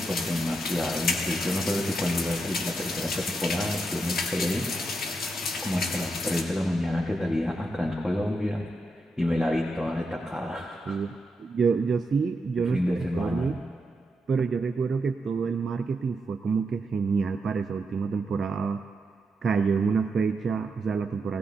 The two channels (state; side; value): normal; both; correlation 0.84